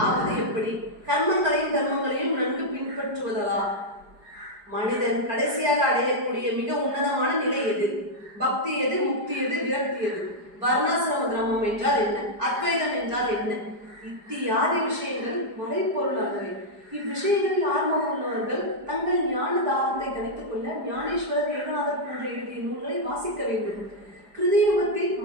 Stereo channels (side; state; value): left; late; 4.9 ms